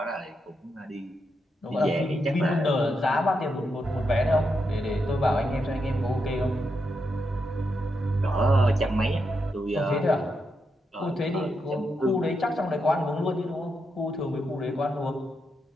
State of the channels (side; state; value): both; normal; correlation 0.83